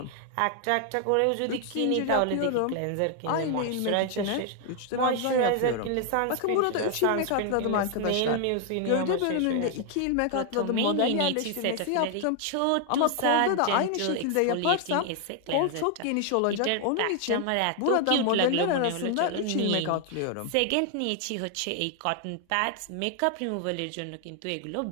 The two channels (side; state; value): both; different; correlation 0.00